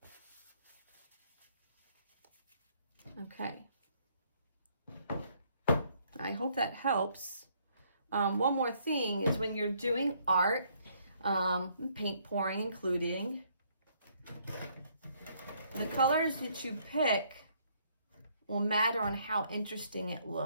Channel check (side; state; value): both; inverted; correlation -0.67